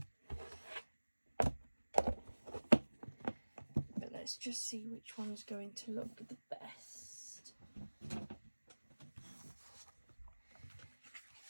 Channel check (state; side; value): inverted; both; correlation -1.00